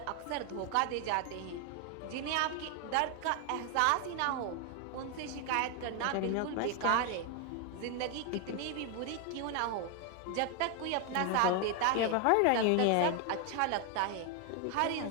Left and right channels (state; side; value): different; both; correlation 0.01